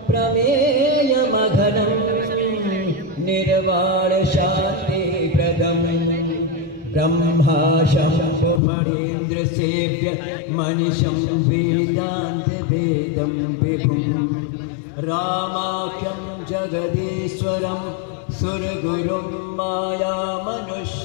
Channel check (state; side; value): drops out; right; at 8.6 s